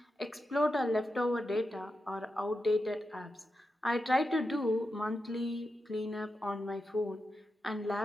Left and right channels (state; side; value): normal; both; correlation 0.89